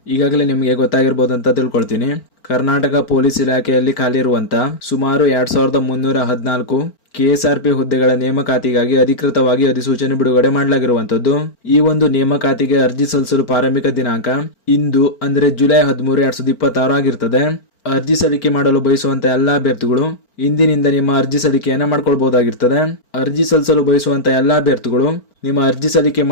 ಈಗಾಗಲೇ ನಿಮಗೆ ಗೊತ್ತಾಗಿರ್ಬೋದು ಅಂತ ತಿಳ್ಕೊಳ್ತೀನಿ. ಕರ್ನಾಟಕ ಪೊಲೀಸ್ ಇಲಾಖೆಯಲ್ಲಿ ಖಾಲಿ ಇರುವಂತ ಸುಮಾರು 2314 KSRP ಹುದ್ದೆಗಳ ನೇಮಕಾತಿಗಾಗಿ ಅಧಿಕೃತವಾಗಿ ಅಧಿಸೂಚನೆ ಬಿಡುಗಡೆ ಮಾಡಲಾಗಿರುವಂತದ್ದು. ಈ ಒಂದು ನೇಮಕಾತಿಗೆ ಅರ್ಜಿ ಸಲ್ಲಿಸಲು ಪ್ರಾರಂಭಿಕ ದಿನಾಂಕ ಇಂದು ಅಂದ್ರೆ ಜುಲೈ 13, 2026 ಆಗಿರ್ತದೆ. ಅರ್ಜಿ ಸಲ್ಲಿಕೆ ಮಾಡಲು ಬಯಸುವಂತ ಎಲ್ಲಾ ಅಭ್ಯರ್ಥಿಗಳು ಇಂದಿನಿಂದ ನಿಮ್ಮ ಅರ್ಜಿ ಸಲ್ಲಿಕೆಯನ್ನ ಮಾಡ್ಕೊಳ್ಬಹುದಾಗಿರ್ತದೆ. ಅರ್ಜಿ ಸಲ್ಲಿಸಲು ಬಯಸುವಂತ ಎಲ್ಲಾ ಅಭ್ಯರ್ಥಿಗಳು ನಿಮ್ಮ ಅರ್ಜಿ ಸಲ್ಲಿಕೆ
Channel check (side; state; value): right; late; 4.4 ms